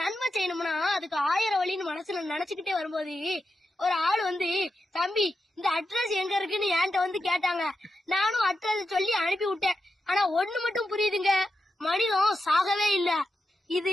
செய்யணும்னா அதுக்கு 1000 வழின்னு மனசுல நினைச்சுக்கிட்டே வரும்போது ஒரு ஆள் வந்து, தம்பி இந்த அட்ரஸ் எங்க இருக்குன்னு என்கிட்ட வந்து கேட்டாங்க. நானும் அட்ரஸ் சொல்லி அனுப்பி விட்டேன். ஆனா ஒண்ணு மட்டும் புரியுதுங்க, மனிதன் சாகவே இல்ல.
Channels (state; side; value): normal; both; correlation 0.88